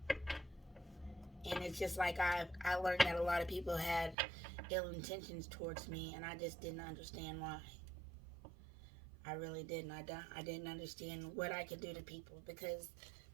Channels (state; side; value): drops out; left; at 4.2 s